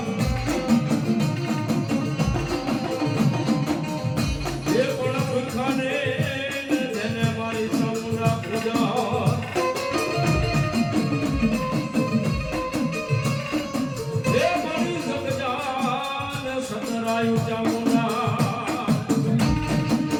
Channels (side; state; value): both; identical; correlation 1.00